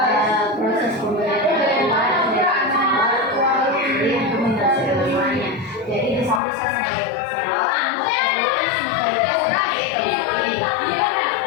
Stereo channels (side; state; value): right; drops out; at 6.4 s